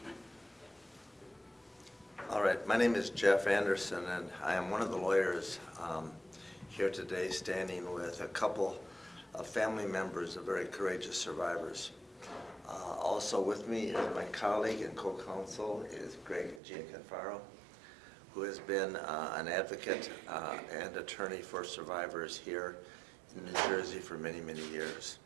All right, my name is Jeff Anderson, and I am one of the lawyers here today standing with a couple of family members of very courageous survivors. Also with me is my colleague and co-counsel is Greg Gianforcaro, who has been an advocate and attorney for survivors here in New Jersey for many, many years.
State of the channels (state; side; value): drops out; left; at 16.6 s